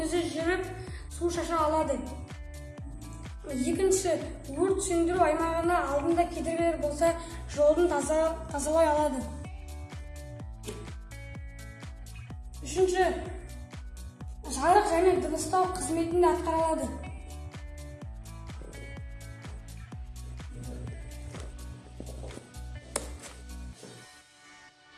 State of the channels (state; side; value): identical; both; correlation 1.00